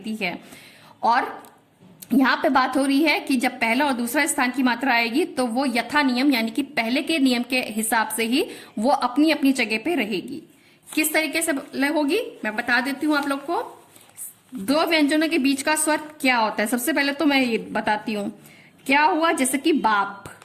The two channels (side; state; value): both; identical; correlation 1.00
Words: है। और यहाँ पे बात हो रही है कि जब पहला और दूसरा स्थान की मात्रा आएगी तो वो यथा नियम यानी कि पहले के नियम के हिसाब से ही वो अपनी अपनी जगह पे रहेगी। किस तरीके से होगी मैं बता देती हूँ आप लोग को। दो व्यंजनों के बीच का स्वर क्या होता है, सबसे पहले तो मैं ये बताती हूँ क्या हुआ। जैसे कि बाप,